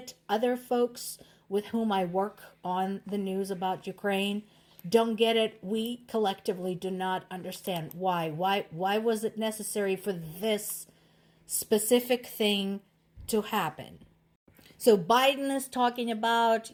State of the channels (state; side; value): identical; both; correlation 1.00